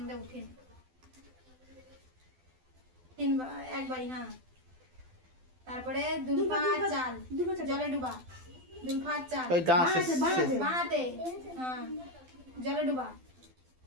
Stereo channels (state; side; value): late; left; 12 ms